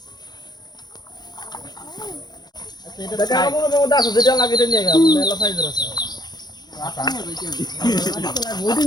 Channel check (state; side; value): late; right; 0.20 ms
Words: এটা আমার মনে দাস যেটা লাগে এটা নিয়ে গেল মেলা সাইজের আছে আটা বডি